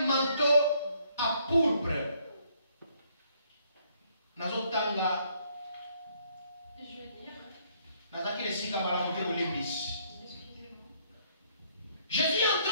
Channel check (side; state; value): both; inverted; correlation -0.67